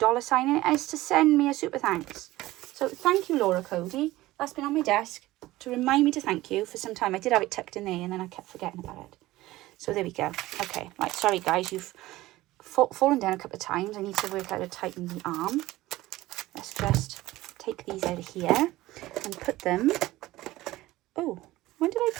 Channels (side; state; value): left; quieter; 17.5 dB